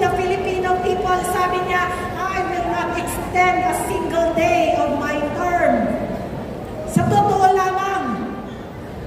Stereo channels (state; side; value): identical; both; correlation 1.00